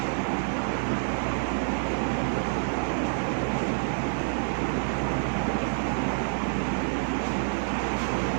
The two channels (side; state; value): left; silent; digital silence